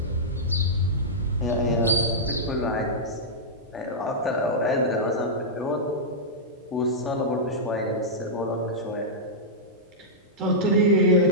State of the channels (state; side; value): normal; both; correlation -0.11